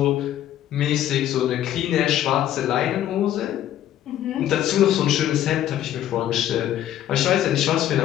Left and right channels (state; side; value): quieter; right; 11.9 dB